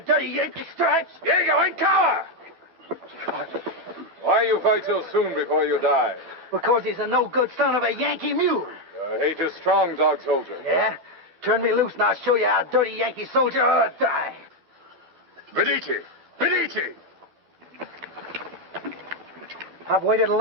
dirty Yankee stripes. Diego, in cover! Why you fight so soon before you die? Because he's a no-good son of a Yankee mule. Your hate is strong, dog soldier. Yeah? Turn me loose and I'll show you how a dirty Yankee soldier ought to die. Medici! Medici! I've waited a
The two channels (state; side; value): late; left; 12 ms